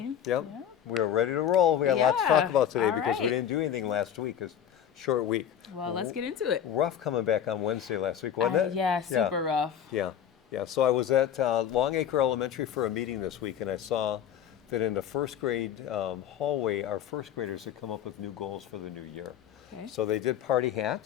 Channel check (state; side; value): quieter; right; 9.4 dB